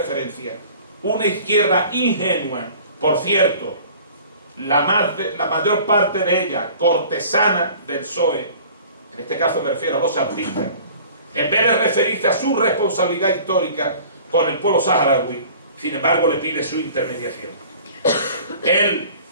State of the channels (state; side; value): inverted; both; correlation -0.47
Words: una izquierda ingenua, por cierto, la mayor parte de ella cortesana del PSOE, en este caso me refiero a los artistas, en vez de referirse a su responsabilidad histórica con el pueblo saharaui, sin embargo le pide su intermediación. Él,